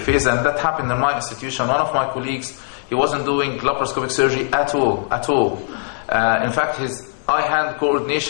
And that happened in my institution. One of my colleagues, he wasn't doing laparoscopic surgery at all. In fact, his eye-hand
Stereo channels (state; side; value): silent; right; 55 dB below the other